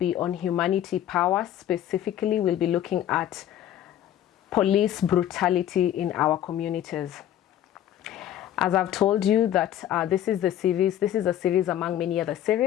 on humanity power. Specifically, we'll be looking at police brutality in our communities. As I've told you that this is a series among many other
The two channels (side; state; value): right; quieter; 11.5 dB